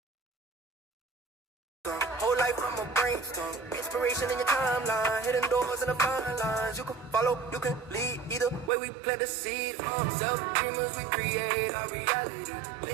Whole life from a brainstorm. Inspiration in your timeline. Hidden doors and the fine lines. You can follow, you can lead. Either way we plant the seed. Self-dreamers, we create our reality.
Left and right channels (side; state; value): left; drops out; at 8.7 s